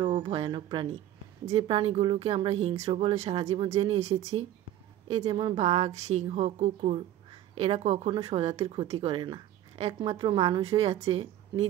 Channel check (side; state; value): left; quieter; 12.5 dB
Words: ও ভয়ানক প্রাণী। যে প্রাণীগুলোকে আমরা হিংস্র বলে সারা জীবন জেনে এসেছি, এই যেমন বাঘ, সিংহ, কুকুর, এরা কখনো স্বজাতির ক্ষতি করে না। একমাত্র মানুষই আছে